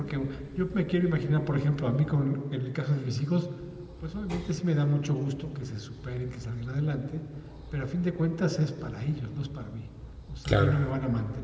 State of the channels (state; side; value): identical; both; correlation 1.00